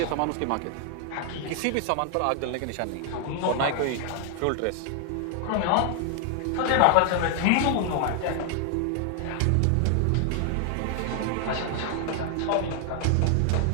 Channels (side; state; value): both; different; correlation 0.00